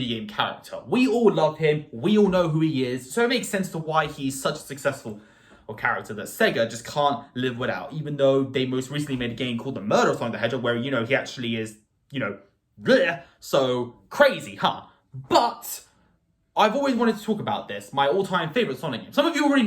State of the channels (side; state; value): both; identical; correlation 1.00